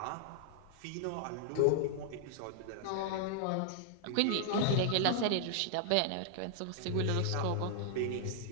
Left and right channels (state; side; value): different; both; correlation -0.01